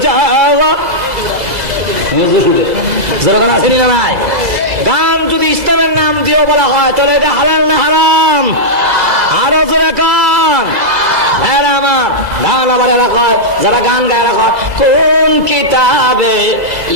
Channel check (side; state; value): left; late; 2.0 ms